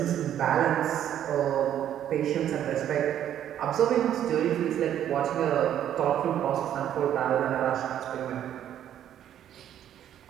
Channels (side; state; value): left; quieter; 10.6 dB